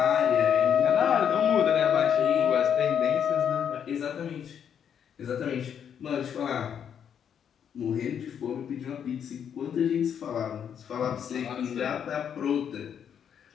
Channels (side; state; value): right; quieter; 8.3 dB